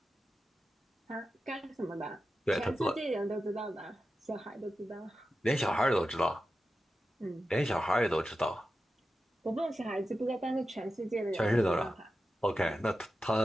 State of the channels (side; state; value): both; normal; correlation 0.92